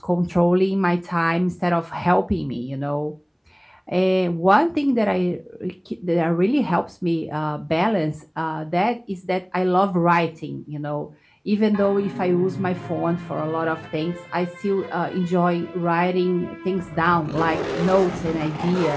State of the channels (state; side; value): identical; both; correlation 1.00